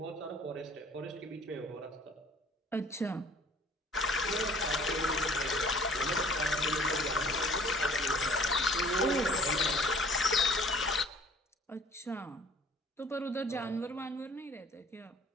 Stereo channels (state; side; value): normal; both; correlation 0.53